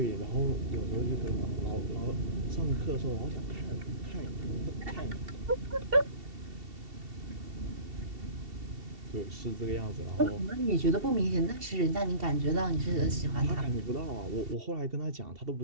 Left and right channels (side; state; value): left; late; 2.7 ms